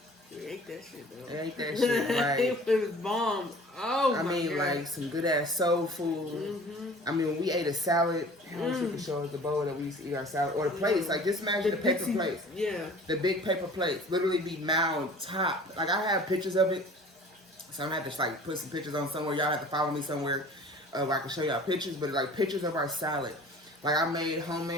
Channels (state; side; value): normal; both; correlation 0.46